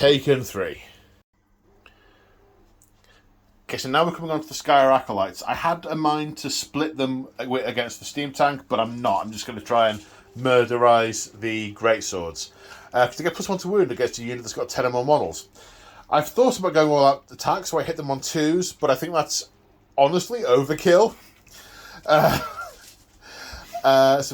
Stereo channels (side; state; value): both; identical; correlation 1.00